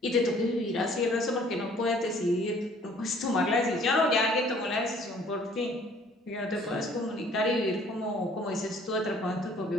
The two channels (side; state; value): both; normal; correlation 0.56